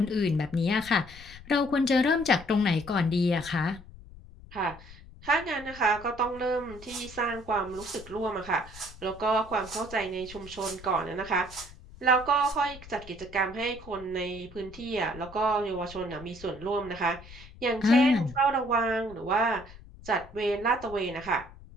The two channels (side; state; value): left; noise; rumble, 18 dB below the sound